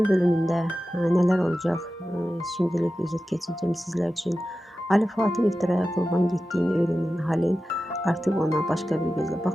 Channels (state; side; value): normal; both; correlation 0.93